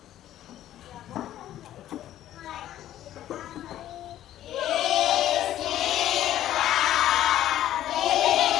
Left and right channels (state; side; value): quieter; right; 12.6 dB